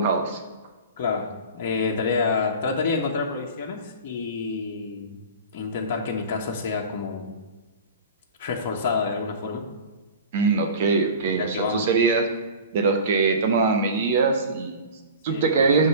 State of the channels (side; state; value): both; inverted; correlation -0.36